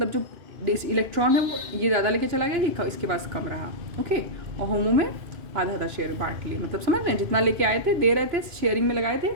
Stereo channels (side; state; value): left; late; 2.9 ms